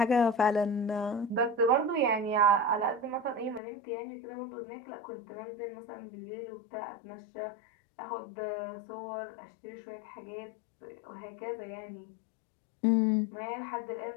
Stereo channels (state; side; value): drops out; right; at 3.6 s